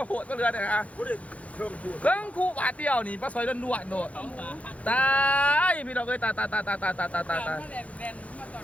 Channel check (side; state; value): right; late; 0.066 ms